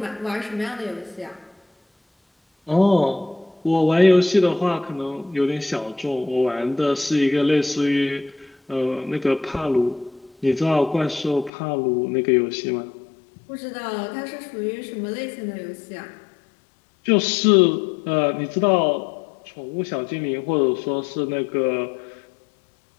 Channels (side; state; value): right; drops out; at 11.5 s